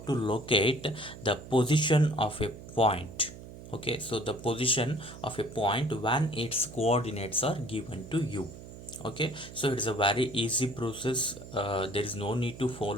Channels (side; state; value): right; noise; hum, 15 dB below the sound